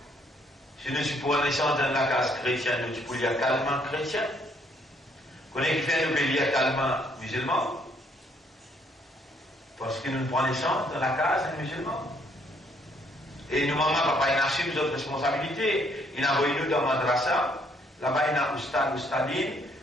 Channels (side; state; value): both; normal; correlation 0.67